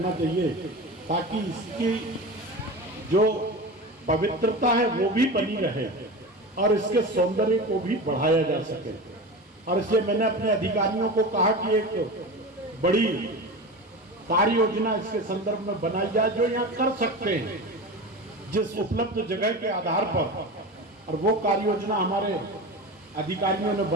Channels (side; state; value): both; normal; correlation 0.28